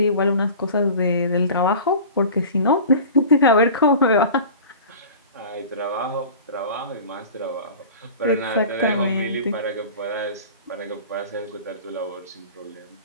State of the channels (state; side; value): inverted; both; correlation -0.38